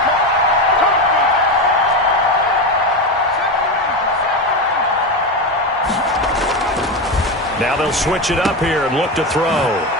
Now they'll switch it up here and look to throw.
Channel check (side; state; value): both; normal; correlation 0.16